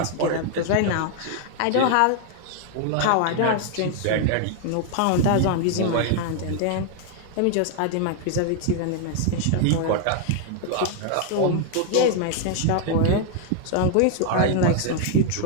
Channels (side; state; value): both; different; correlation 0.00